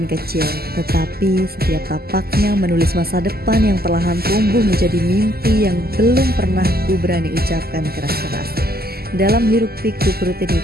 kecil, tetapi setiap tapaknya menulis masa depan yang perlahan tumbuh menjadi mimpi yang belum pernah ku berani ucapkan keras-keras. Dalam hiruk pikuk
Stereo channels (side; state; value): left; late; 0.45 ms